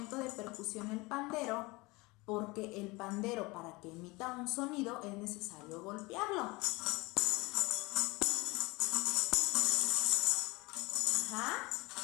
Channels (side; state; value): right; quieter; 23.7 dB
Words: de percusión el pandero? Porque el pandero, para que emita un sonido, es necesario golpearlo. Ajá.